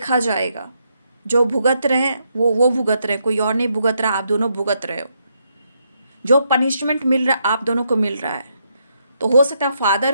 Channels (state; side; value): inverted; both; correlation -0.78